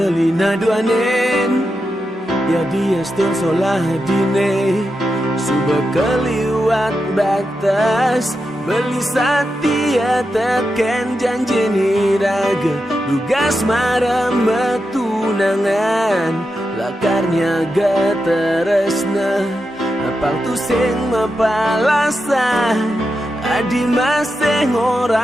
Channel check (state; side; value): normal; both; correlation 0.88